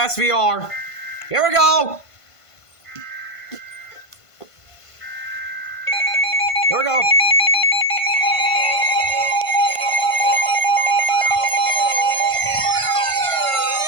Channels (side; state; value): right; late; 1.5 ms